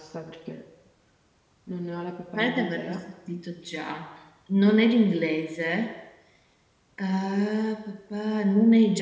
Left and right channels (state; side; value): identical; both; correlation 1.00